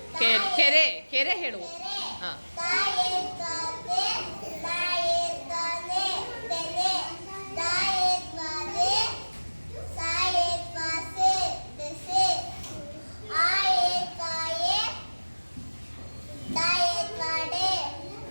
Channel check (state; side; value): inverted; both; correlation -1.00